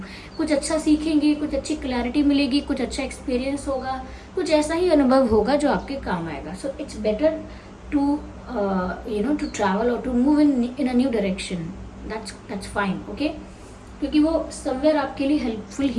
कुछ अच्छा सीखेंगे, कुछ अच्छी क्लैरिटी मिलेगी, कुछ अच्छा एक्सपीरियंस होगा, कुछ ऐसा ही अनुभव होगा जो आपके काम आएगा। So it's better to to travel और to move in a new direction. That's fine. Okay, क्योंकि वो समवेयर आपके लिए हेल्पफुल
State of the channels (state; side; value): identical; both; correlation 1.00